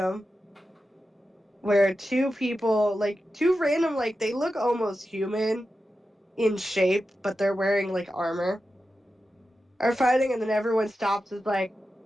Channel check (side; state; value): both; normal; correlation 0.91